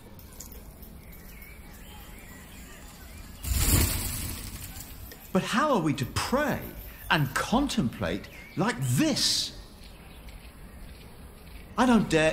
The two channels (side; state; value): both; identical; correlation 1.00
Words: But how are we to pray and contemplate like this? I don't dare